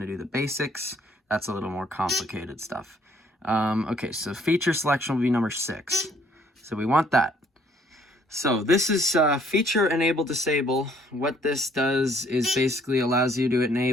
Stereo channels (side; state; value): both; normal; correlation 0.63